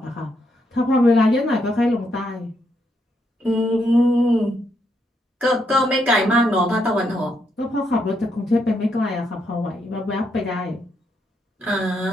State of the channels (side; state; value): both; normal; correlation 0.78